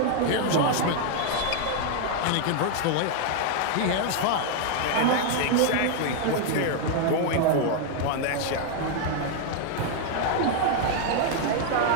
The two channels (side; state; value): both; different; correlation 0.00